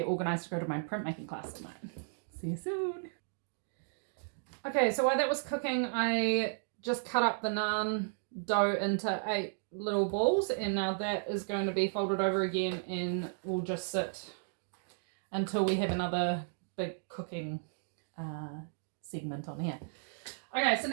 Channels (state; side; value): silent; left; digital silence